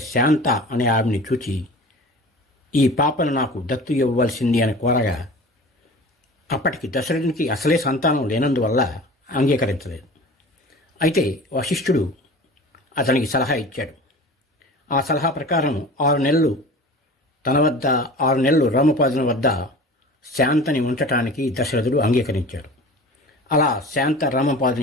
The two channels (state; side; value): normal; both; correlation 0.39